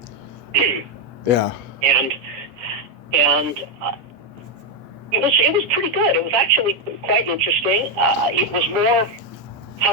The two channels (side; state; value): left; late; 8.4 ms